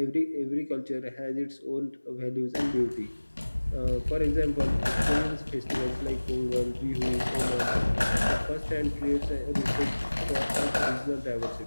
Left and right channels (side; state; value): both; inverted; correlation -1.00